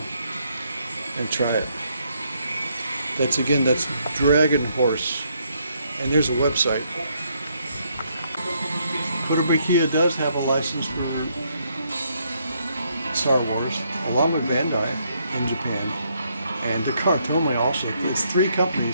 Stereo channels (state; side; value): inverted; both; correlation -0.73